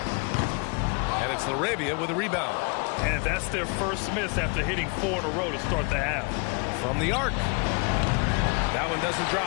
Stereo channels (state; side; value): quieter; right; 32.7 dB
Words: And it's LaRavia with a rebound. And that's their first miss after hitting 4 in a row to start the half. From the arc. That one doesn't